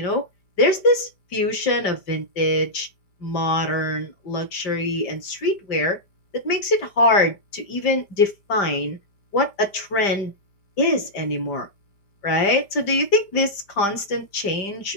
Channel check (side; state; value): right; late; 5.1 ms